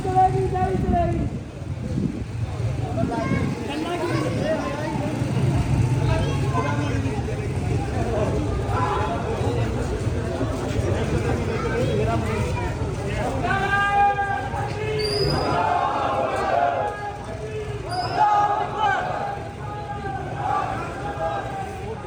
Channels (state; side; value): identical; both; correlation 1.00